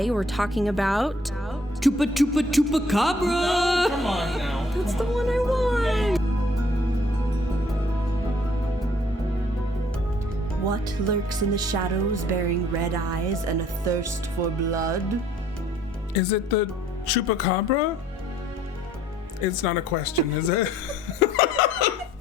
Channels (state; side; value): normal; both; correlation 0.60